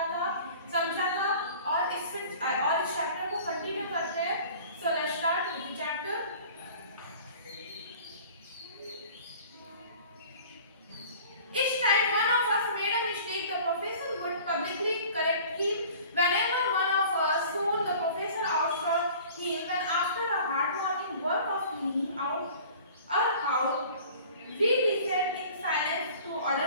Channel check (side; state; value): both; inverted; correlation -0.46